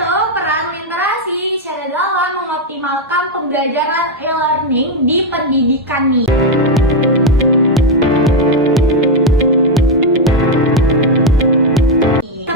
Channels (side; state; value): both; normal; correlation 0.04